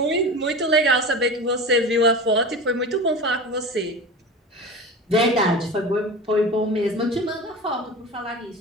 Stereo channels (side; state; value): both; normal; correlation 0.30